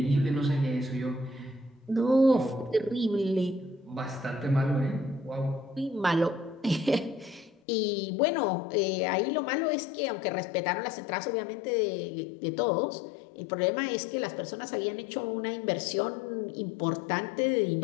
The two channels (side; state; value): right; drops out; at 7.6 s